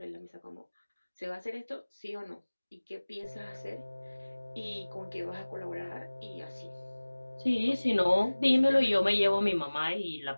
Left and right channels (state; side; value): inverted; both; correlation -1.00